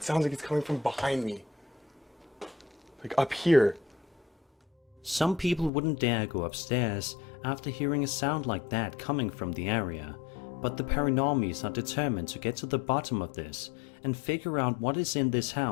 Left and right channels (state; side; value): drops out; right; at 5.7 s